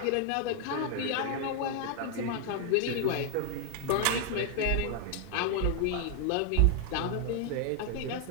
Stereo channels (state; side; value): different; both; correlation 0.00